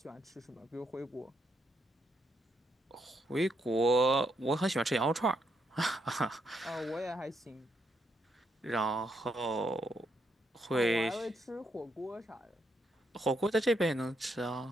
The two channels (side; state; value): both; normal; correlation 0.77